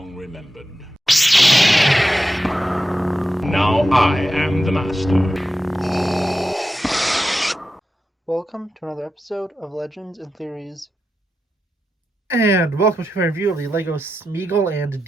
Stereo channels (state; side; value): normal; both; correlation 0.89